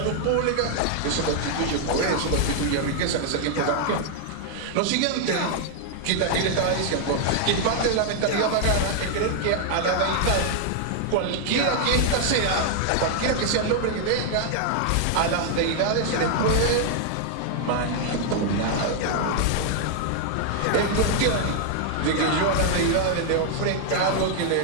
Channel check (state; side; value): different; both; correlation 0.00